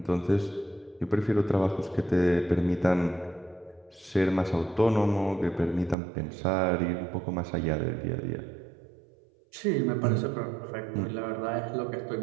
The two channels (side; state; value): left; drops out; at 6.0 s